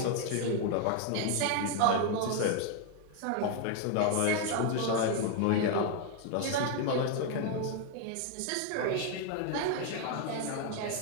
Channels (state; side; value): different; both; correlation 0.01